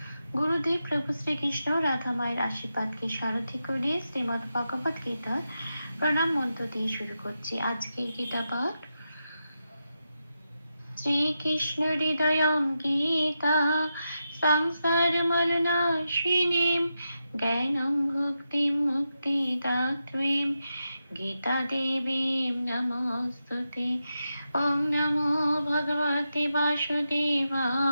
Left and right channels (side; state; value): both; inverted; correlation -0.88